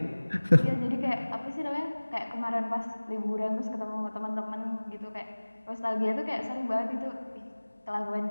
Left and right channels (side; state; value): both; inverted; correlation -1.00